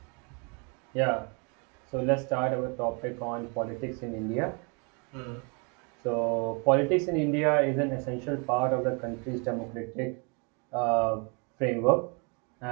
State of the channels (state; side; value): quieter; left; 34.4 dB